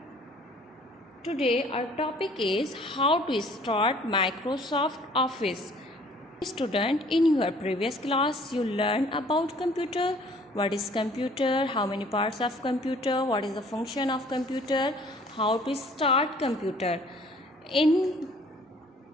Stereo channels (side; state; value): both; normal; correlation 0.55